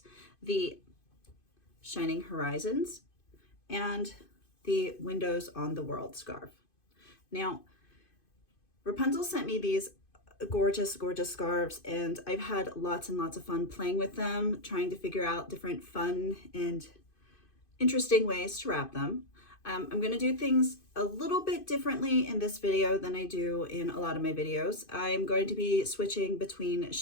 the Shining Horizons and the Windows on the World scarf. Now, Wrapunzel sent me these gorgeous scarves, and I've had lots and lots of fun playing with them, trying to figure out different fun and interesting ways to wrap them. I'm going to do things a little bit differently in this video than I do in a lot of my videos. I'm going to be switching between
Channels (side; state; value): right; late; 2.5 ms